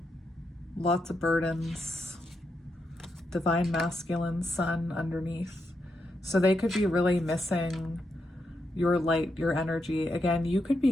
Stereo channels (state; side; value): normal; both; correlation 0.83